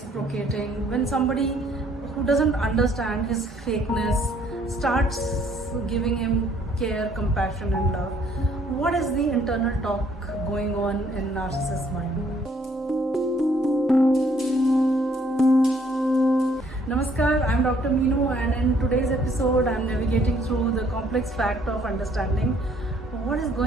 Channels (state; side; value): normal; both; correlation 0.64